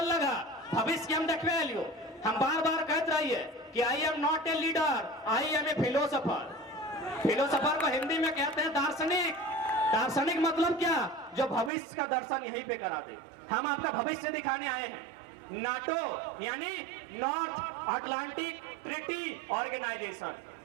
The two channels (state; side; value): drops out; left; at 11.7 s